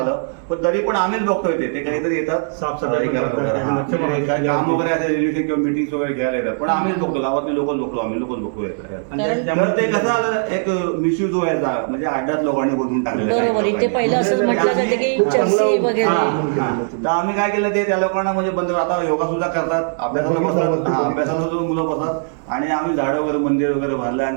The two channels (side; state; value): left; silent; 66 dB below the other